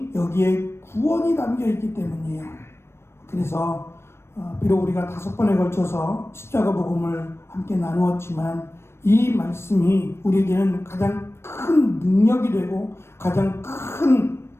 여기에 구원이 담겨 있기 때문이에요. 그래서 비록 우리가 5번에 걸쳐서 십자가 복음을 함께 나누었지만 이 말씀이 우리에게는 가장 큰 능력이 되고 가장 큰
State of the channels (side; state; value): right; late; 0.12 ms